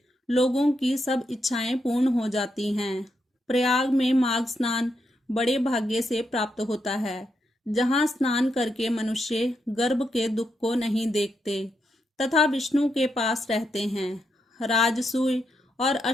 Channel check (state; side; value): normal; both; correlation 0.82